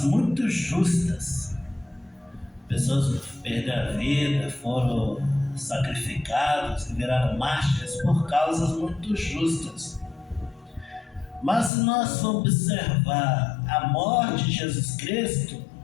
muito justas. Pessoas perderam a vida, foram sacrificados, viraram mártires por causas muito justas. Mas se nós formos observar a morte de Jesus Cristo,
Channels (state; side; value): drops out; right; at 11.7 s